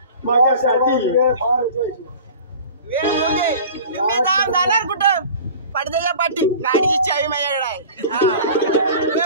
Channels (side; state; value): both; inverted; correlation -0.41